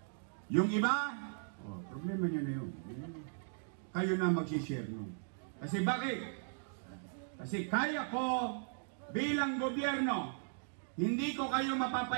Yung iba, problema nyo na yun. Kayo na mag-share nun. Kasi bakit? Kasi kaya ko bilang gobyerno, hindi ko kayo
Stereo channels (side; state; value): left; silent; digital silence